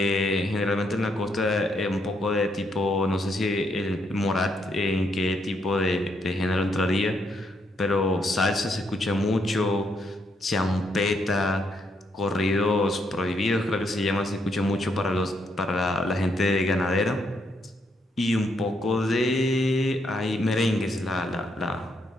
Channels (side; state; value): both; normal; correlation 0.76